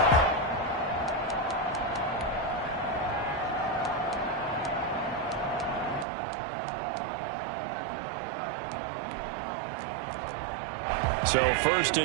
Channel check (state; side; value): drops out; left; at 6.1 s